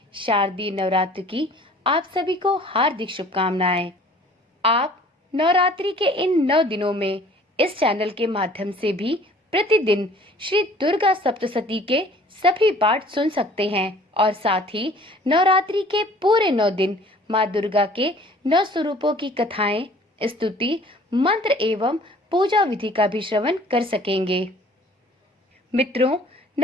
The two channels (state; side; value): normal; both; correlation 0.52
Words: शारदीय नवरात्र की आप सभी को हार्दिक शुभकामनाएं। आप नवरात्रि के इन 9 दिनों में इस चैनल के माध्यम से भी प्रतिदिन श्री दुर्गा सप्तशती के सभी पाठ सुन सकते हैं और साथ ही नवरात्रि के पूरे 9 दिन माँ दुर्गा के 9 स्वरूपों की कथाएं, स्तुति, मंत्र एवं पूजा विधि का भी श्रवण कर सकेंगे। मित्रों,